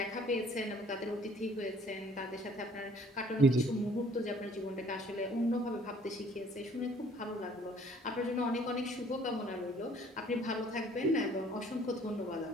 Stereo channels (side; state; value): both; normal; correlation 0.57